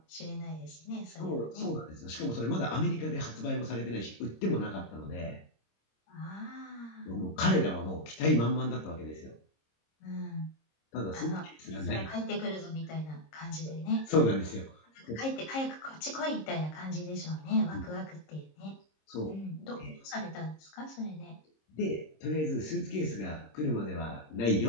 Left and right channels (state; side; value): late; right; 26 ms